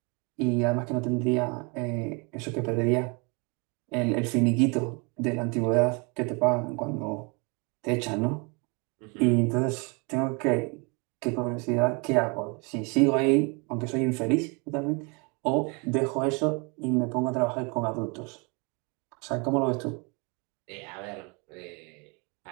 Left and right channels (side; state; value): left; quieter; 31.3 dB